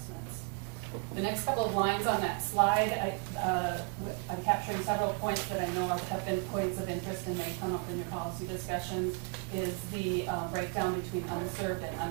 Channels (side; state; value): left; quieter; 35.7 dB